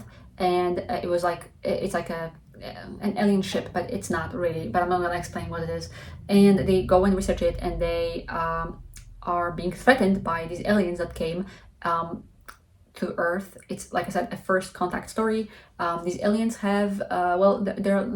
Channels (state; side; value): identical; both; correlation 1.00